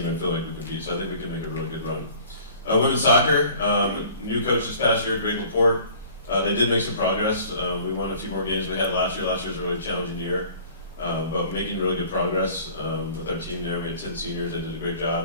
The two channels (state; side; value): inverted; both; correlation -0.50